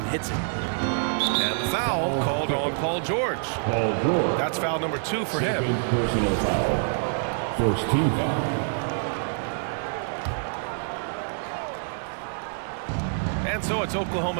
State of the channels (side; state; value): left; silent; digital silence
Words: hits it. And the foul called on Paul George. That's foul number 2 for him. Personal foul. First team foul. And so it's